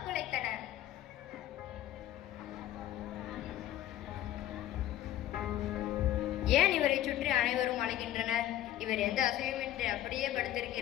குலைத்தன. ஏன் இவரை சுற்றி அனைவரும் அழைக்கின்றனர்? இவர் எந்த அசையுமின்றி அப்படியே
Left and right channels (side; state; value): right; quieter; 13.2 dB